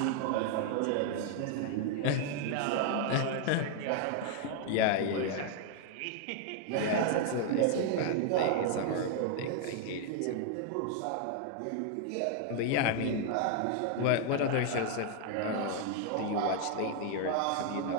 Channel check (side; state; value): both; different; correlation 0.00